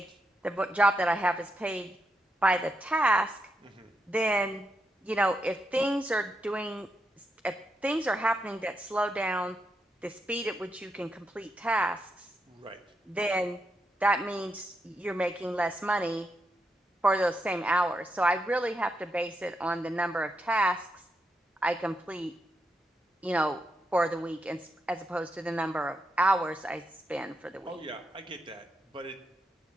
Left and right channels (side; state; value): both; normal; correlation 0.83